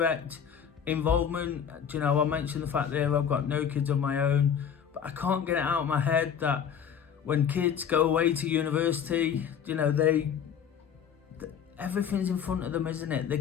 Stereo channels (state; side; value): quieter; right; 8.0 dB